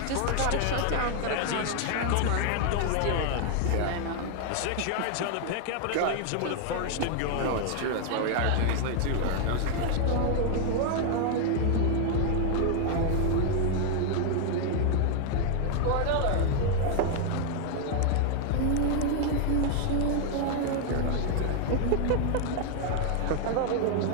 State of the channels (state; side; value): different; both; correlation 0.00